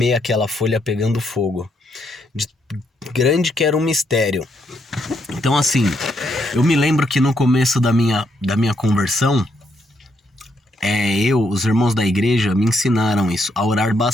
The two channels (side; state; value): both; normal; correlation 0.76